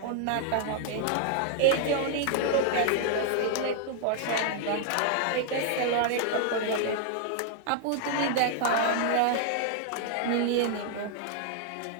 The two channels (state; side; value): different; both; correlation -0.01